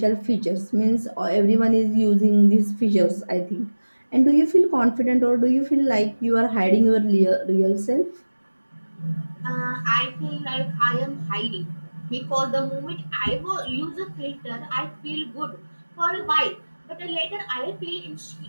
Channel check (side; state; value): both; inverted; correlation -1.00